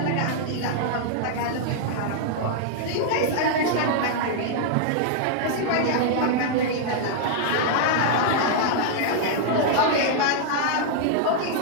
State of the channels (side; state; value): both; different; correlation -0.01